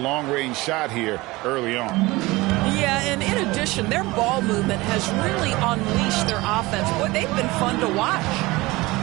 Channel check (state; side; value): quieter; left; 21.1 dB